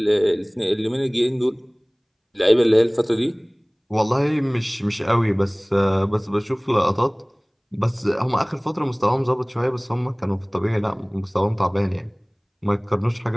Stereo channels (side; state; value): both; identical; correlation 1.00